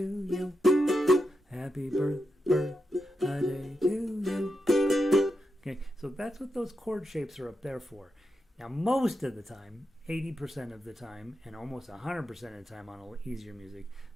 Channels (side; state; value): both; normal; correlation 0.87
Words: you, happy birthday to you. Okay, so that's what those chord shapes are up there for. Now, most of the time, 80% of the time, and almost 100% of the time on easier music,